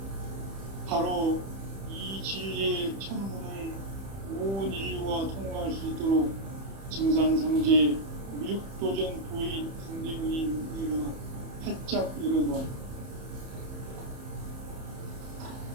바로 이 진리의 첫 문을 온 인류가 통과할 수 있도록 증산상제 미륵도전 도인 강대문인 네가 활짝 열어놓았다.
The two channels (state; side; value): late; left; 31 ms